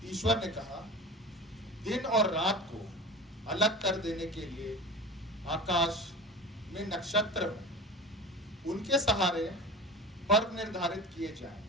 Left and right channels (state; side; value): normal; both; correlation 0.33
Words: ईश्वर ने कहा, दिन और रात को अलग कर देने के लिए आकाश में नक्षत्र हो, उनके सहारे पर्व निर्धारित किए जाएं,